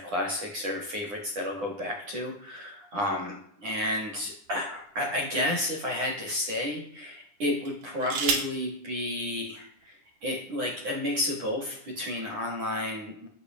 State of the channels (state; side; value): late; left; 9.9 ms